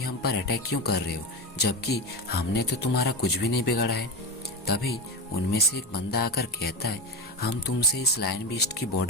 हम पर अटैक क्यों कर रहे हो जबकि हमने तो तुम्हारा कुछ भी नहीं बिगाड़ा है। तभी उनमें से एक बंदा आकर कहता है, हम तुमसे इस लायन बीस्ट की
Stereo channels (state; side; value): normal; both; correlation 0.20